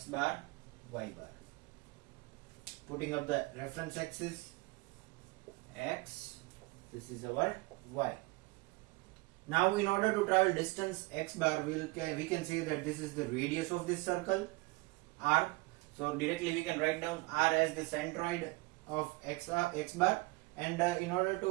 bar, y bar. Putting up the reference axis, x, this is our y. Now in order to travel distance x bar, we can say that this is the radius of this circle, r. So directly we can write down r as the centroid of x bar, and in order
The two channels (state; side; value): quieter; left; 24.1 dB